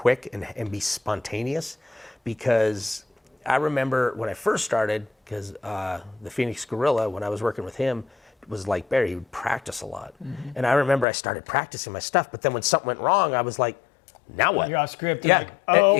and be spontaneous, because I remember when I first started, because the Phoenix Gorilla, when I was working with him, was like Barry, he would practice a lot. And I remember I started practicing my stuff, but then when something went wrong, I was like, now what? You're off script. Yeah, Like, oh,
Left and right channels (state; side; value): drops out; right; at 11.1 s